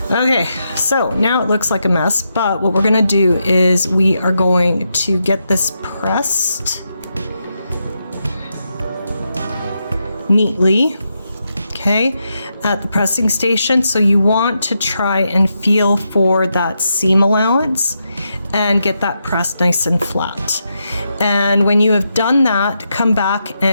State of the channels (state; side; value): inverted; both; correlation -0.84